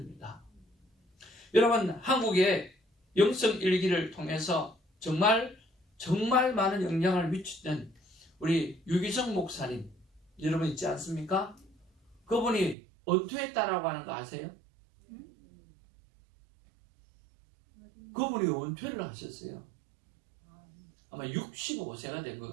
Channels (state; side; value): drops out; left; at 12.8 s